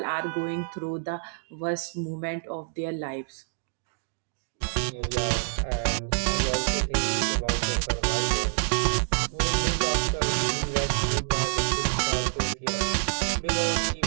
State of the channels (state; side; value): silent; left; digital silence